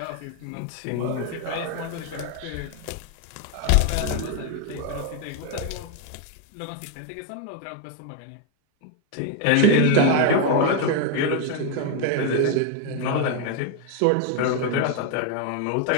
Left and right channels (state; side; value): different; both; correlation 0.01